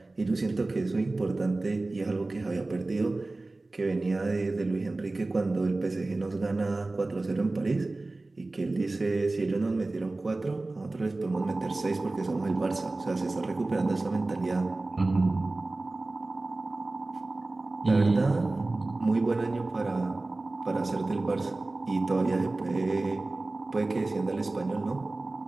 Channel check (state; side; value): quieter; left; 3.1 dB